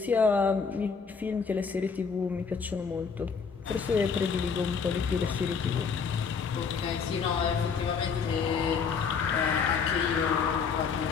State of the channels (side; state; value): right; quieter; 5.8 dB